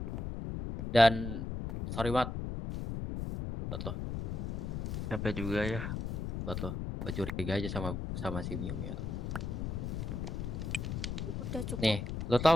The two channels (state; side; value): noise; left; rumble, 3 dB below the sound